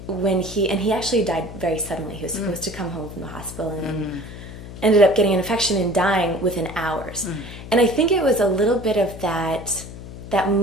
when he actually died very suddenly. He was supposed to come home from the hospital and ended up getting an infection and dying within hours. And I think it was a little bit of that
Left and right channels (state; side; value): noise; left; hum, 13 dB below the sound